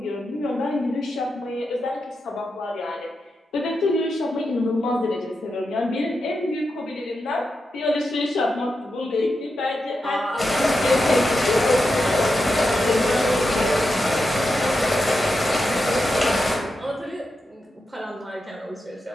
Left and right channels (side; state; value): both; normal; correlation 0.88